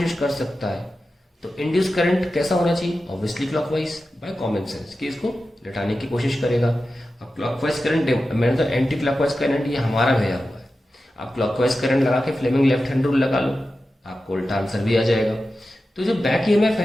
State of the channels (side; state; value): both; normal; correlation 0.92